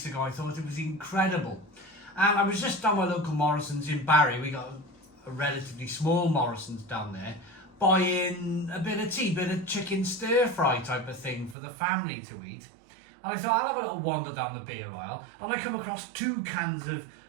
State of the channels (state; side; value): drops out; left; at 11.6 s